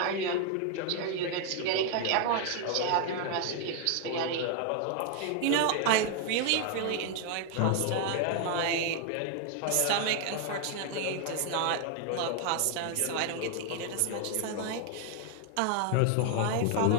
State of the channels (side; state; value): both; different; correlation 0.00